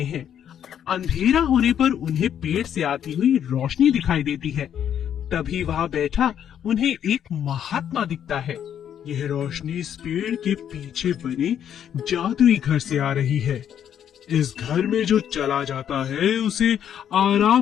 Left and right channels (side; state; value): right; quieter; 9.4 dB